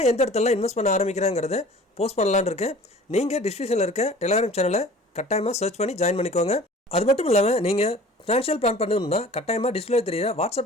எந்த இடத்துல இன்வெஸ்ட் பண்ண ஆரம்பிக்கிறேங்கிறத போஸ்ட் பண்ணலான்னு இருக்கேன். நீங்கள் டிஸ்கிரிப்ஷனில் இருக்க டெலிகிராம் சேனலை கட்டாயமாக சர்ச் பண்ணி ஜாயின் பண்ணிக்கோங்க. அது மட்டும் இல்லாமல் நீங்கள் ஃபினான்ஷியல் பிளான் பண்ணணும்னா கட்டாயமாக டிஸ்பிளே தெரியுற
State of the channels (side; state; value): both; normal; correlation 0.45